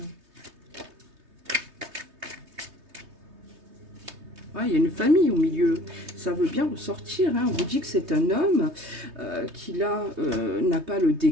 Ah, il y a une famille au milieu. Ça veut bien ressortir. Hein. On vous dit que c'est un homme qui là n'a pas le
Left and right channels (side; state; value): left; late; 3.2 ms